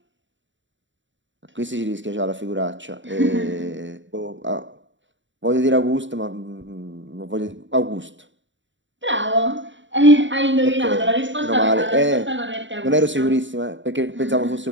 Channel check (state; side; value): late; left; 0.54 ms